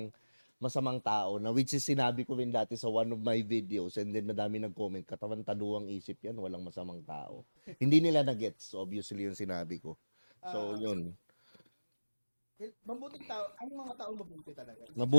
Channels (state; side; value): inverted; both; correlation -1.00